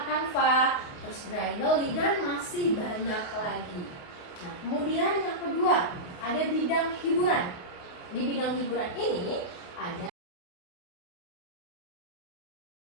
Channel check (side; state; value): right; late; 28 ms